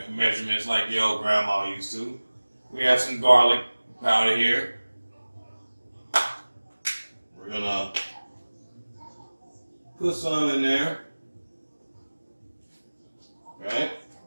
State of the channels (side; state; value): both; inverted; correlation -1.00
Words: like the old grandma used to. We have some garlic powder here. We're going to put some in there. Right?